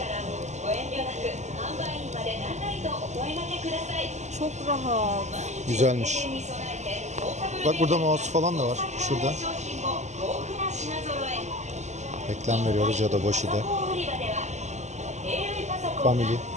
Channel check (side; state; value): left; late; 0.33 ms